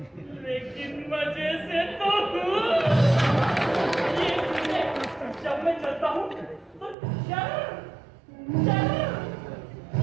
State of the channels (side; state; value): left; drops out; at 7.0 s